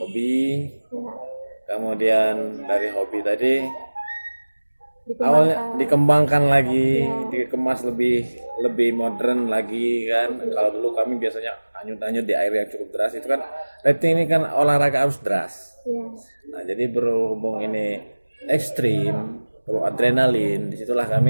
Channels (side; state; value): both; inverted; correlation -1.00